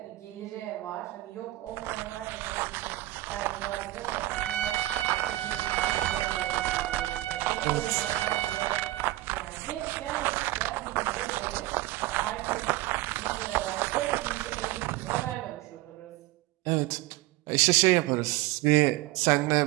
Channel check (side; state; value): left; quieter; 17.9 dB